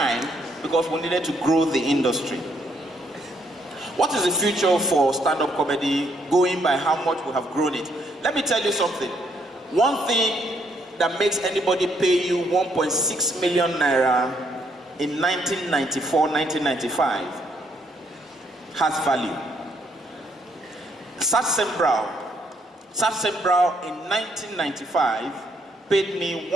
because we needed to grow the industry. What is the future for stand-up comedy going by how much we have grown it? Let me tell you something. One thing that makes anybody pay you 1.6 million naira in 1994, 1995 has value. Satsembrow in 1995 paid me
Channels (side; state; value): both; normal; correlation 0.71